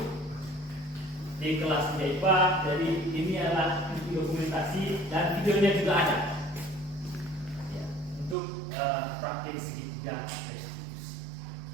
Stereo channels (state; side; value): drops out; left; at 8.3 s